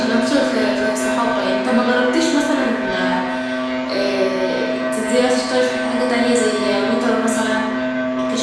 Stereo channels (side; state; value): both; identical; correlation 1.00